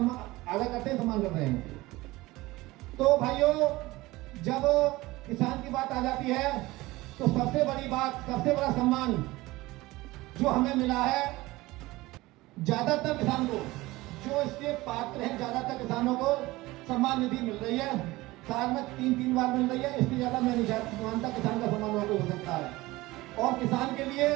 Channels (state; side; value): quieter; left; 19.6 dB